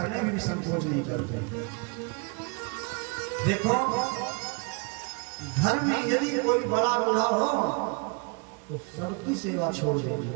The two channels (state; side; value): quieter; left; 32.0 dB